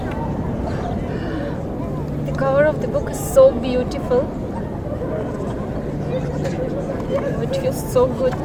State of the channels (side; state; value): both; identical; correlation 1.00